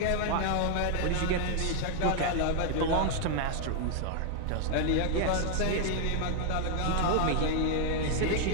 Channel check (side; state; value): both; different; correlation 0.00